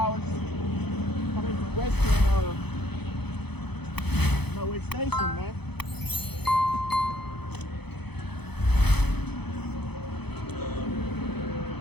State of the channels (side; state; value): right; late; 0.98 ms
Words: was coming to Western Norway Station, man.